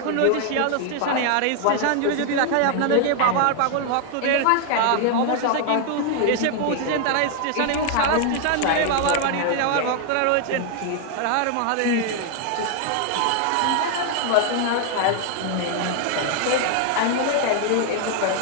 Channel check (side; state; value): both; different; correlation 0.00